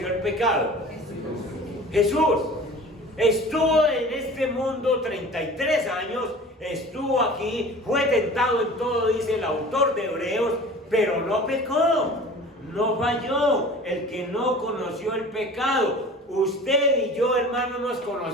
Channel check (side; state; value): both; normal; correlation 0.41